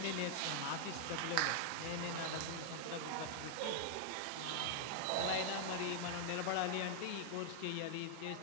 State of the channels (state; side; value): different; both; correlation 0.00